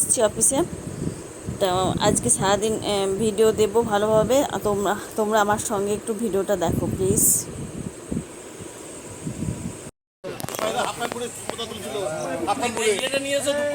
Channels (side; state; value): both; identical; correlation 1.00